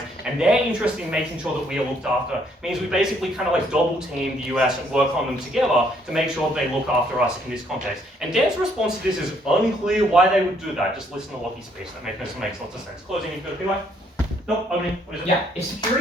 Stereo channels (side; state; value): both; normal; correlation 0.68